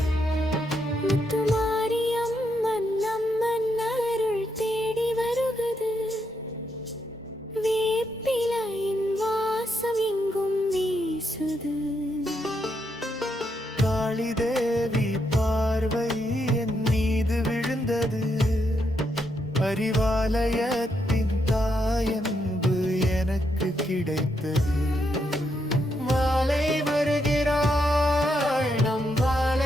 முத்துமாரியம்மன் அம்மன் அருள் தேடி வருகுது. வேப்பிலையின் வாசம் எங்கும் வீசுது. காளி தேவி பார்வை என் மீது விழுந்தது. அறிவாலயத்தின் தாயன்பு எனக்கு கிடைத்தது. மாலை வருகிறாள், நம்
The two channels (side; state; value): both; normal; correlation 0.79